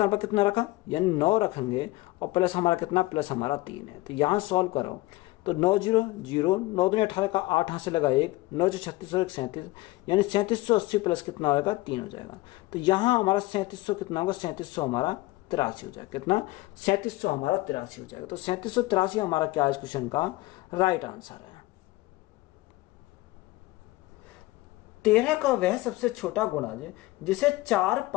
पर कितना रखा, यानी 9 रखेंगे और प्लस हमारा कितना, प्लस हमारा 3 है। तो यहाँ सॉल्व करो तो 9 0 0, 9 दूनी 18 का 8 यहाँ से लगा 1, 9 36 और 1 37, यानी 3780 प्लस कितना होगा 3 हो जाएगा। तो यहाँ हमारा 3700 कितना होगा, 3700 हमारा 83 हो जाएगा। कितना, 3700 हमारा 83 हो जाएगा। तो 3783 हमारा क्या है इस क्वेश्चन का राइट आंसर है। 13 का वह सबसे छोटा गुणज जिसे 4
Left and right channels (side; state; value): right; quieter; 19.8 dB